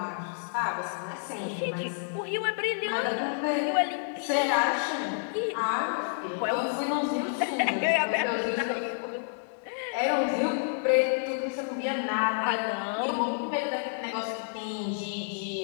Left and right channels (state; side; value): silent; right; 58 dB below the other